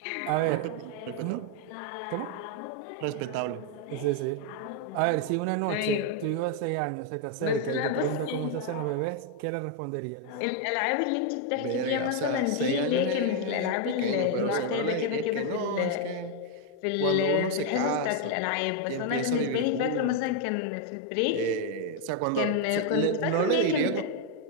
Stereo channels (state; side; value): different; both; correlation 0.01